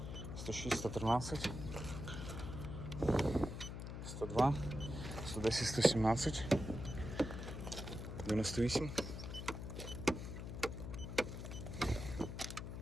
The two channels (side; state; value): left; noise; hum, 7 dB below the sound